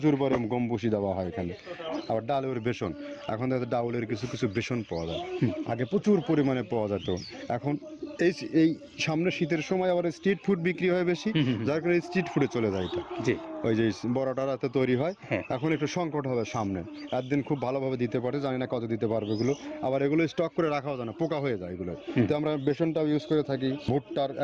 পরিমাণে গম ভুসি দেওয়া হয় এখানে। আবার ডালের বেসন, এখন তো ডাউলের কিছু কিছু বেসন পাওয়া যায়, আগে প্রচুর পরিমাণে পাওয়া যেত। এখন এই সামনে শীতের সময় আবার স্ট্রিট ফুড বিক্রি হয় বেশি, যার কারণে স্ট্রিট ফুডে চলে যায় এটা। জি। ওই যে বড়টা রাতে তৈরি হয়, হ্যাঁ। এখন একটু সংকট হবে সামনে। একদিন খুব ভালোভাবে দিতে পারে, জানি না কত দিতে পারবে এগুলো। আবার এগুলো স্টক করে রাখাও যায় না, পোকা হয়ে যায় এগুলো। তো আমরা বেসনটাও ইউজ করে থাকি। ভুট্টার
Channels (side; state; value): both; identical; correlation 1.00